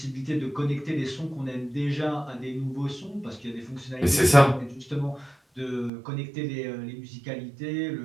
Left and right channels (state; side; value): drops out; left; at 5.9 s